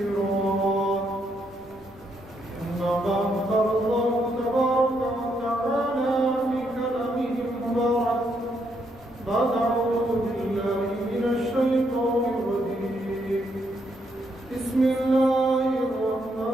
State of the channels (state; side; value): noise; left; rumble, 24 dB below the sound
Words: أما بعد قال الله تبارك وتعالى في كلامه المبارك بعد أعوذ بالله من الشيطان الرجيم بسم الله